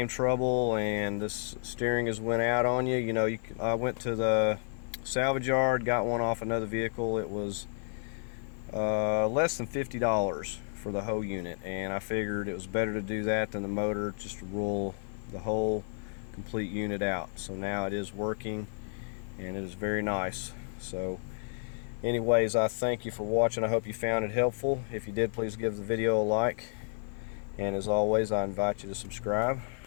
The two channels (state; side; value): silent; right; digital silence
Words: trouble and this steering has went out on you, you know, I went to the salvage yard, got one off another vehicle. It was less than $50 for the whole unit, and I figured it was better to do that than the motor, just to roll the whole complete unit out. So now it is working, and it is very nice. So anyways, I thank you for watching. I hope you found it helpful. If you did, please give the video a like. And as always, I invite you to subscribe.